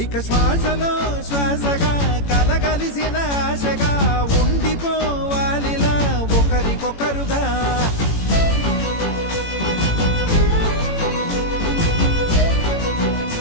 ఇక శ్వాసలో శ్వాసగా కలగలిసిన ఆశగా, ఉండిపోవాలిలా ఒకరికొకరుగా.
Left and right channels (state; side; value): late; right; 18 ms